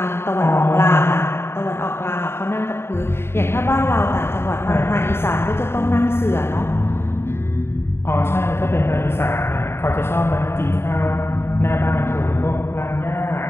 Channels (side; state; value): right; late; 0.12 ms